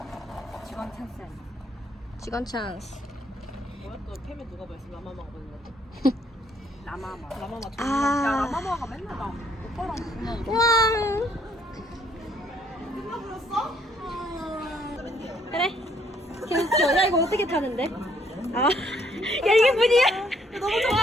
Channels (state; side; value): normal; both; correlation 0.67